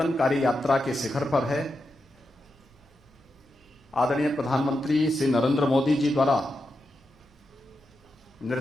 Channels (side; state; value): both; normal; correlation 0.87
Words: यात्रा के शिखर पर है। आदरणीय प्रधानमंत्री श्री नरेंद्र मोदी जी द्वारा